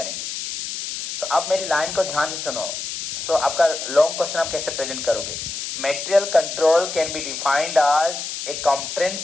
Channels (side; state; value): left; noise; hiss, 6 dB below the sound